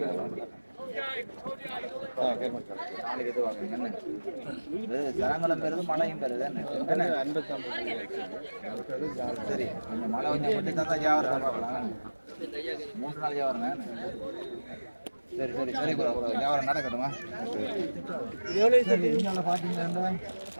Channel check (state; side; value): inverted; both; correlation -1.00